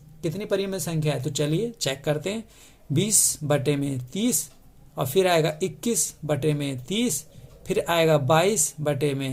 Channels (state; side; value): identical; both; correlation 1.00